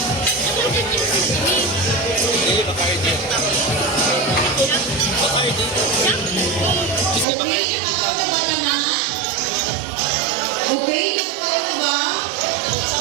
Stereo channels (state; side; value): drops out; left; at 7.2 s